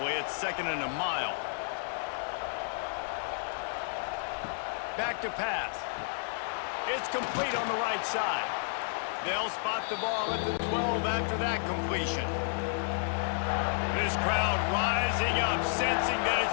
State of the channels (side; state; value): right; silent; digital silence